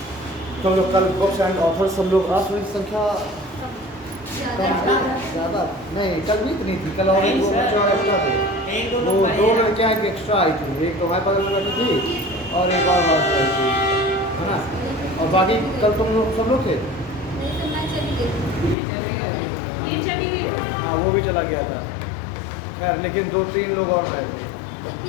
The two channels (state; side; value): drops out; right; at 18.8 s